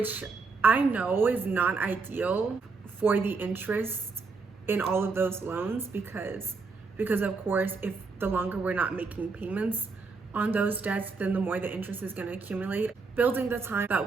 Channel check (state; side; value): quieter; left; 4.4 dB